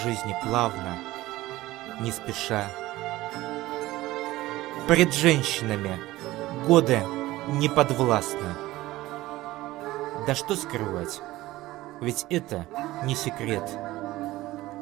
плавно, не спеша. Пред женщинами годы не подвластны. Да что скрывать, ведь это не секрет.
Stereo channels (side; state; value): left; quieter; 17.4 dB